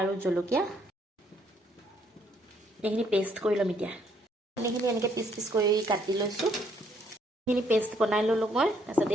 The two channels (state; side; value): normal; both; correlation 0.68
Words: আৰু জলকীয়া এইখিনি পেষ্ট কৰি ল'ম এতিয়া কণীখিনি এনেকৈ পিচ পিচ কৰি কাটি লৈছোঁ এইখিনি পেষ্ট বনাই ল'লোঁ মই তাৰপিছত